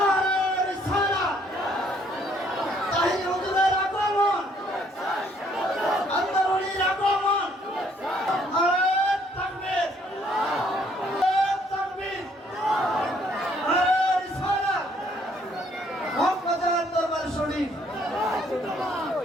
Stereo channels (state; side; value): normal; both; correlation 0.65